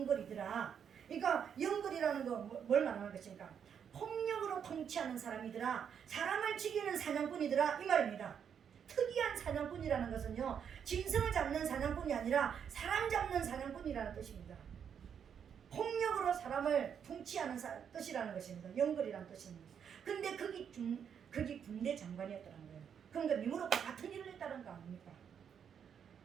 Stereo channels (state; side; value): quieter; left; 7.8 dB